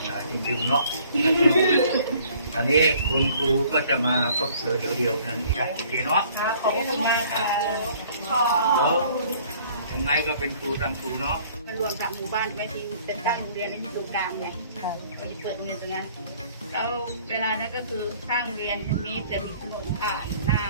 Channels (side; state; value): both; inverted; correlation -0.56